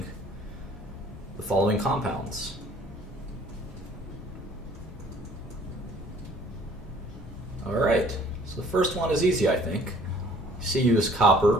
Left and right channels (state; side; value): normal; both; correlation 0.56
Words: compounds. All right, so the first one is easy, I think. Cu is